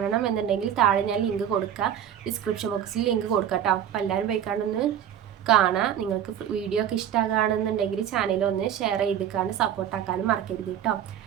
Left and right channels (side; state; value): left; quieter; 9.8 dB